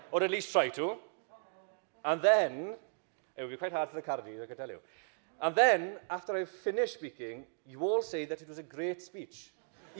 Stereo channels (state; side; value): silent; left; digital silence